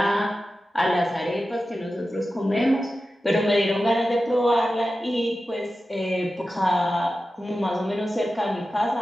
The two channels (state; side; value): normal; both; correlation 0.93